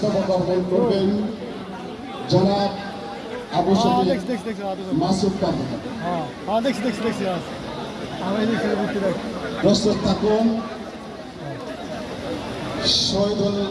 অর্পণ করবেন জনাব আবু শফিক মাসুদ কাদের। প্রস্তুত থাকুন শহীদুল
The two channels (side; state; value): both; identical; correlation 1.00